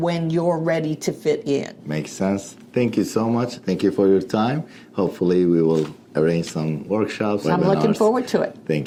you're ready to fit in. Makes sense. Thank you so much. Thank you for your time. Hopefully we will arrange some workshops. I'm looking forward to it.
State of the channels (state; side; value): identical; both; correlation 1.00